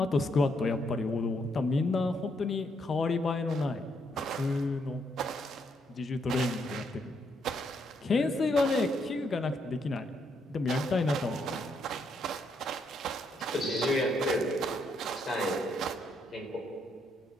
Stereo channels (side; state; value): both; normal; correlation 0.75